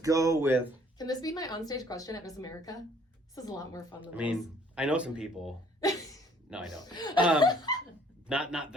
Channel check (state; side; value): normal; both; correlation 0.59